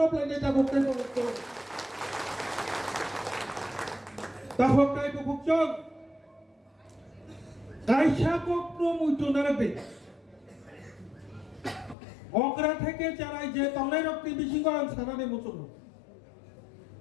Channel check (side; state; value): right; drops out; at 12.0 s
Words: নেতা বকতে বকতে তাহকাই বকচং কাইসা কক্র মুইতো নারবে অকরা থেকে চারাই যে তলাই রক্তি বিশিঙ্গ সানানে মুচন